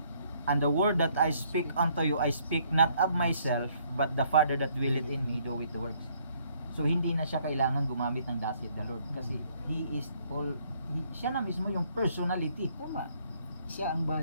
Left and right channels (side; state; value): both; inverted; correlation -0.66